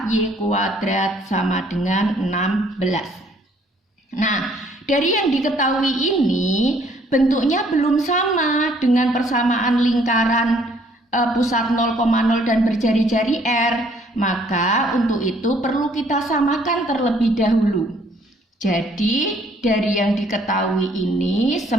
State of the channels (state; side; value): normal; both; correlation 0.63